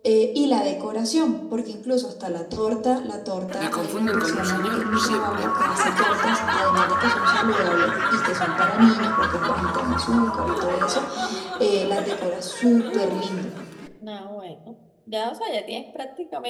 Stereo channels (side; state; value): both; identical; correlation 1.00